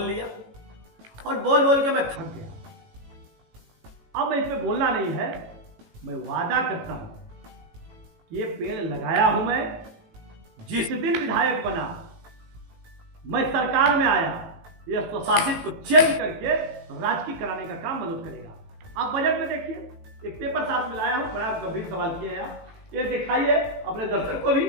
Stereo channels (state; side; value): late; left; 18 ms